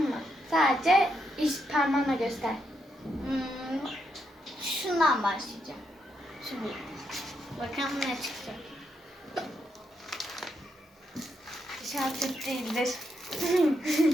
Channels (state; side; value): normal; both; correlation 0.80